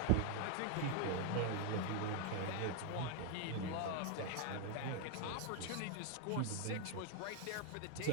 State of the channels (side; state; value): both; different; correlation 0.00